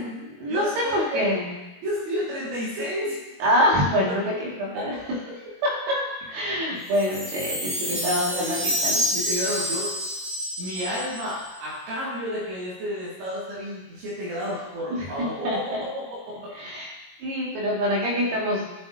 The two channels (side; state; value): left; late; 22 ms